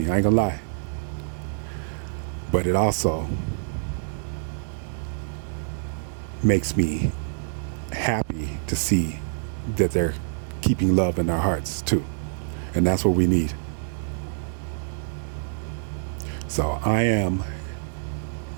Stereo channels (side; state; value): left; silent; 61 dB below the other